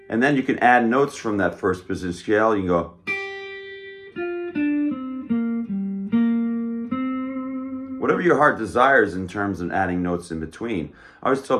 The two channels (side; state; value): both; identical; correlation 1.00